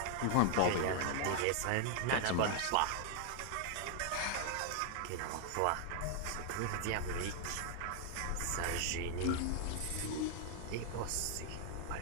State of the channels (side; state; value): both; different; correlation 0.00